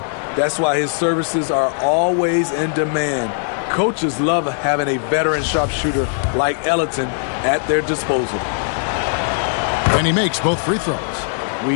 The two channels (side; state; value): right; silent; 66 dB below the other